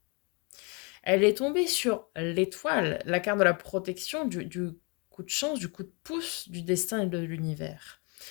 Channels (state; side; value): quieter; right; 32.7 dB